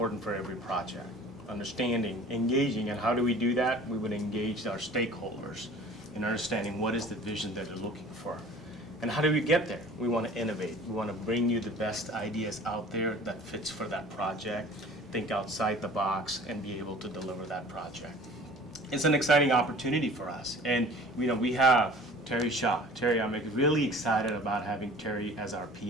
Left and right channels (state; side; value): normal; both; correlation 0.46